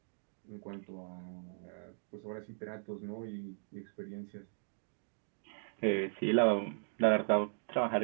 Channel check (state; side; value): silent; left; digital silence